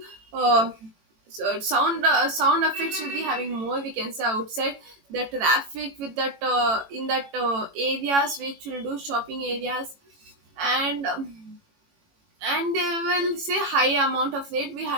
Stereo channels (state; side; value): late; left; 18 ms